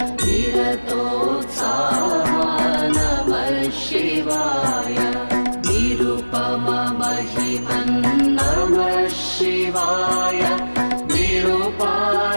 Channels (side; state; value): both; inverted; correlation -1.00